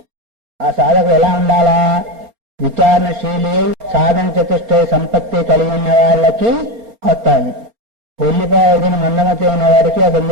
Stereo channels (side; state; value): left; late; 4.3 ms